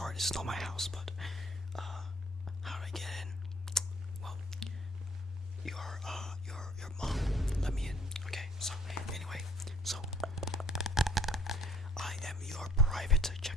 this is not my house, but how did I get in? Well, your mom let me in. Okay, so anyway, so I am your private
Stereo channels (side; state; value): both; normal; correlation 0.58